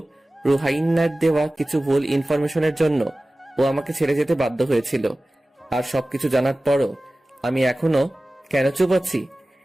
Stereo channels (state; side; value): normal; both; correlation 0.97